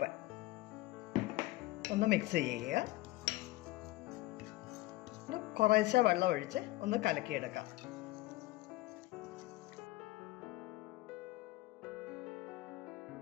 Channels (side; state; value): right; quieter; 18.6 dB